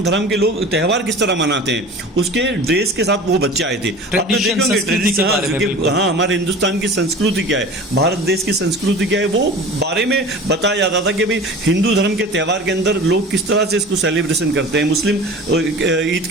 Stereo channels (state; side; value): normal; both; correlation 0.39